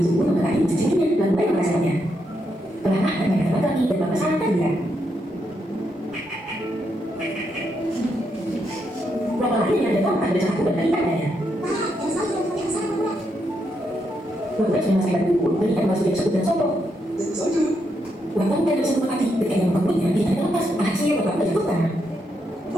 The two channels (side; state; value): both; normal; correlation 0.80